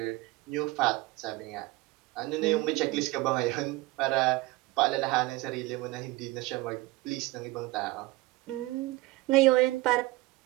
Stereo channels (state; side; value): quieter; left; 20.3 dB